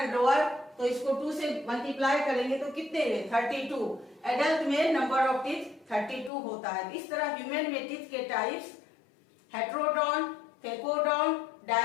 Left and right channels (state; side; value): drops out; right; at 6.3 s